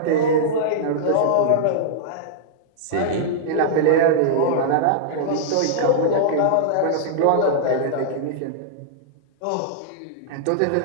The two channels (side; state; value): both; different; correlation -0.02